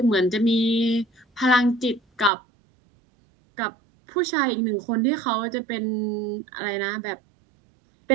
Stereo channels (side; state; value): left; drops out; at 2.3 s